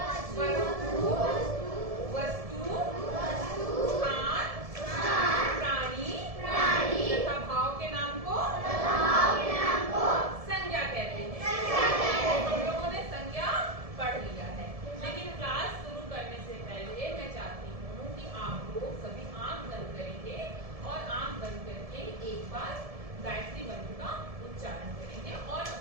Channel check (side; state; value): left; late; 1.7 ms